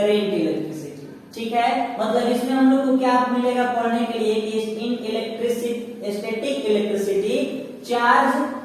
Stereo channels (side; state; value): both; identical; correlation 1.00